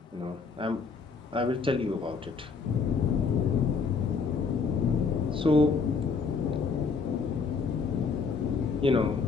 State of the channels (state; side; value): quieter; right; 5.0 dB